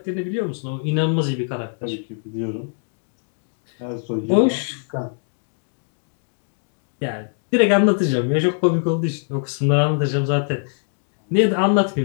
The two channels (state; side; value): silent; right; 57 dB below the other